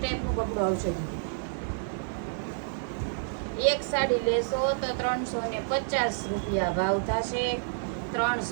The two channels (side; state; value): left; silent; 58 dB below the other